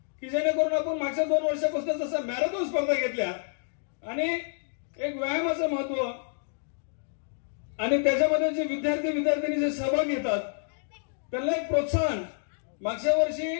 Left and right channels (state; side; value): silent; right; digital silence